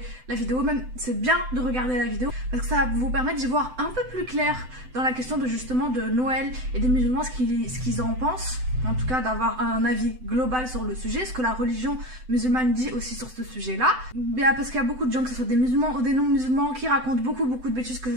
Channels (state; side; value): late; left; 7.9 ms